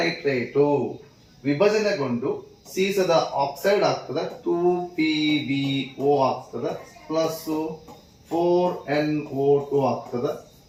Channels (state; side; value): identical; both; correlation 1.00